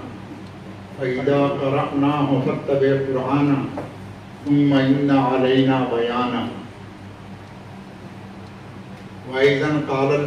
فإذا قرأناه فاتبع قرآنہ ثم إن علينا بيانا. وأيضا قال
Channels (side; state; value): both; identical; correlation 1.00